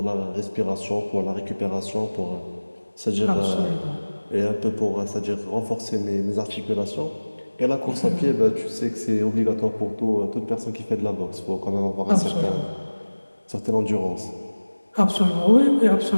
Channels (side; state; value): both; inverted; correlation -1.00